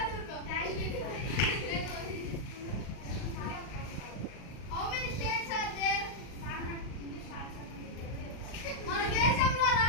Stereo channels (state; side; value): late; right; 39 ms